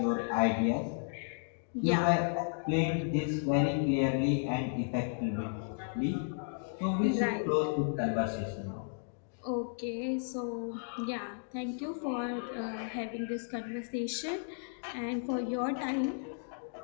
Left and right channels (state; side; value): silent; right; digital silence